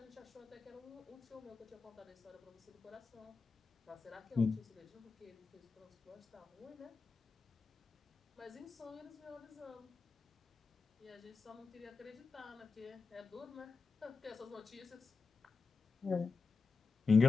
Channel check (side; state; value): right; quieter; 4.6 dB